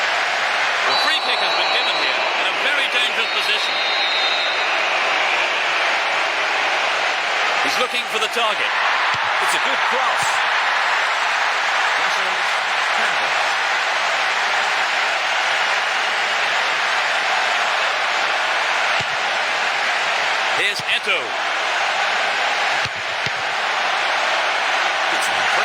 The free kick has been given here in a very dangerous position. He's looking for the target. It's a good cross. Versus Campbell. Here's Eto'o. It's an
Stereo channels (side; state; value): both; identical; correlation 1.00